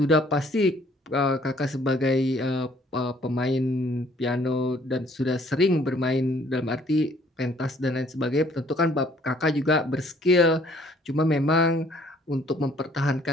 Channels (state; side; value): normal; both; correlation 0.60